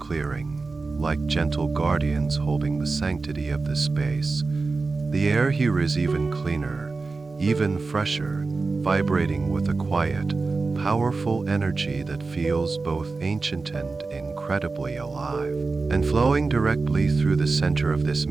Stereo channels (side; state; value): left; quieter; 4.0 dB